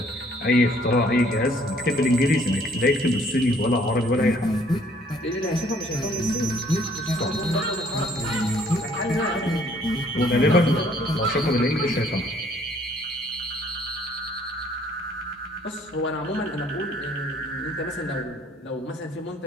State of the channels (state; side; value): normal; both; correlation 0.61